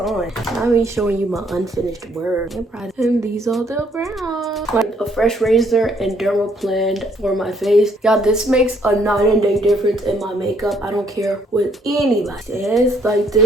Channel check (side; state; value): both; normal; correlation 0.67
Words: I'm me showing you my unfinished work. And these are the brown. Like a fresh razor and dermaplane for my face. Y'all, this makes a night and day difference in my makeup. I don't care what anybody says. Like,